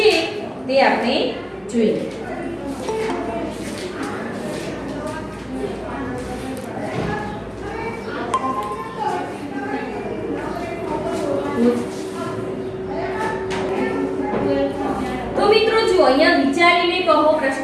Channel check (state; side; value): identical; both; correlation 1.00